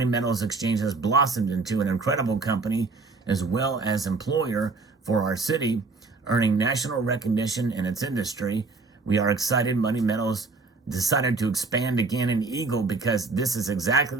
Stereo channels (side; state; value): left; quieter; 3.9 dB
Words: Metals Exchange has blossomed into an incredible company as well as employer for our city, earning national recognition in its industry. We are excited Money Metals decided to expand again in Eagle because this is exactly